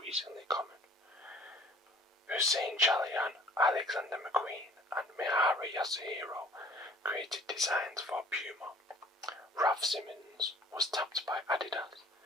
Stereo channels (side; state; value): both; normal; correlation 0.50